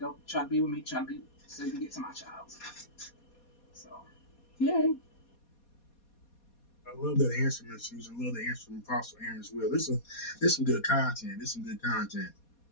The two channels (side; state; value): right; late; 4.2 ms